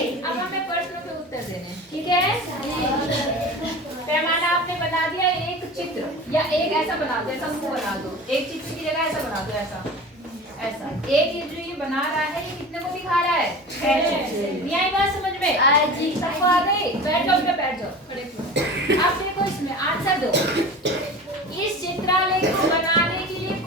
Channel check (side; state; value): both; normal; correlation 0.35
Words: अब हमें प्रश्नों के उत्तर देने, ठीक है? पैमाना आपने बना दिया। एक चित्र या एक ऐसा बना दो, ऐसा मुंह बना दो। एक चित्र की जगह ऐसा बना दो, ऐसा ऐसा। एक ये जो ये बना रहा है, ये कितने को दिखा रहा है? 6 चित्र। ये आई बात समझ में? जी। सबको आ गई? बैठ जाओ बेटा, बैठ जाओ, खड़े हो। अब देखो इसमें आंसर दो। इस चित्रालय को बनाने के लिए